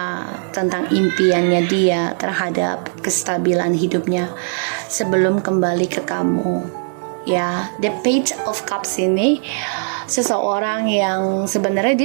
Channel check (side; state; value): left; silent; digital silence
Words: tentang impiannya dia terhadap kestabilan hidupnya sebelum kembali ke kamu ya. The Page of Cups ini seseorang yang sebenarnya